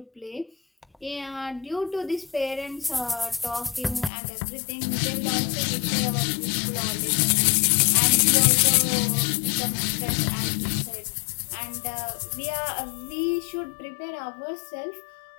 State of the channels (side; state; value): right; drops out; at 4.1 s